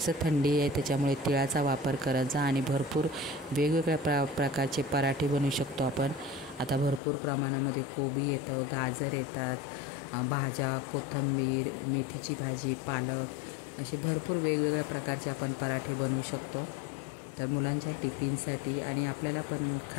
थंडी आहे त्याच्यामुळे तिळाचा वापर करायचा, आणि भरपूर वेगवेगळ्या प्रकारचे पराठे बनवू शकतो आपण। आता भरपूर प्रमाणामध्ये कोबी येतं, गाजर येतात, भाज्या, कोथिंबीर, मेथीची भाजी, पालक, असे भरपूर वेगवेगळ्या प्रकारचे आपण पराठे बनवू शकतो। तर मुलांच्या टिफिनसाठी आणि आपल्याला पण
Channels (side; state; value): right; drops out; at 7.0 s